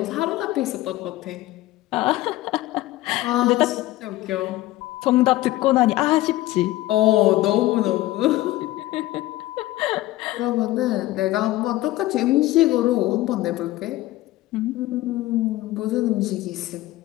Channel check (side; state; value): right; quieter; 16.9 dB